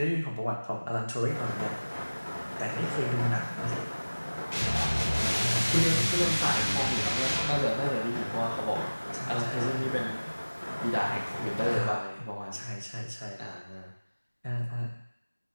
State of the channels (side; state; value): both; inverted; correlation -1.00